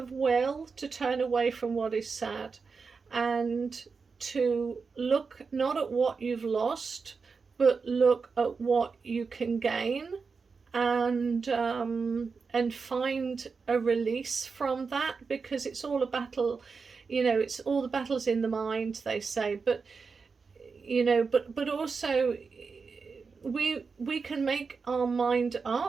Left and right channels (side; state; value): left; quieter; 5.0 dB